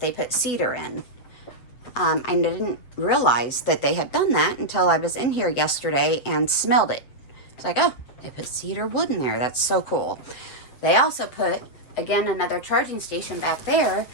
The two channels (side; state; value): right; late; 8.3 ms